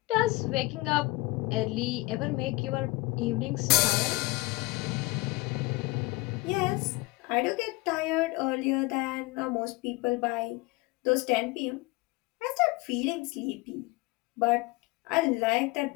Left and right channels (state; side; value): quieter; right; 22.3 dB